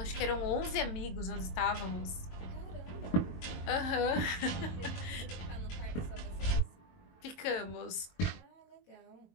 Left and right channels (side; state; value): right; late; 22 ms